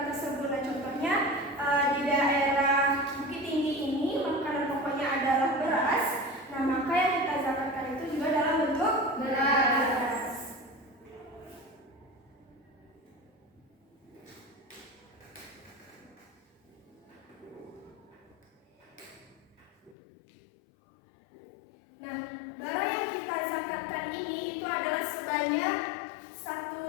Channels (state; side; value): drops out; right; at 20.0 s